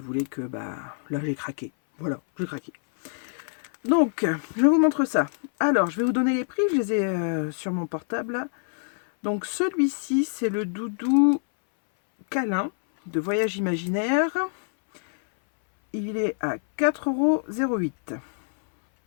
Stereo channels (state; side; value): silent; right; 61 dB below the other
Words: que, bah, là, j'ai craqué. Voilà, j'ai craqué. Donc, je vous montre ça. Alors, je vais vous donner les prix. Je les ai sur mon portable, là. Donc, celui-ci, c'est le doudou câlin de Voyage Imaginaire. Il est à 4,08 €.